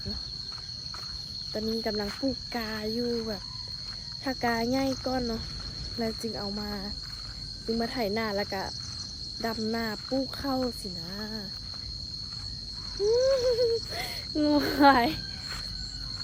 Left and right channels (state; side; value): identical; both; correlation 1.00